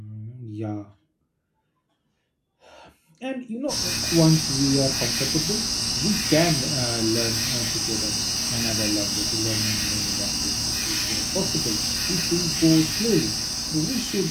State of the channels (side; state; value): both; identical; correlation 1.00